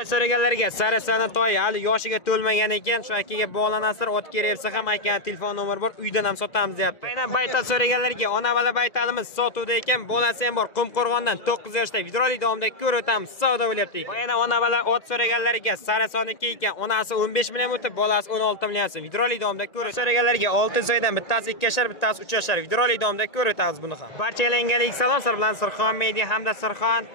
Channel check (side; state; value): right; late; 2.0 ms